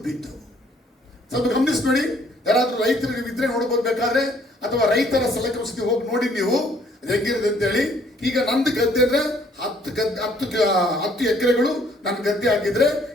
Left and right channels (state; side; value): normal; both; correlation 0.62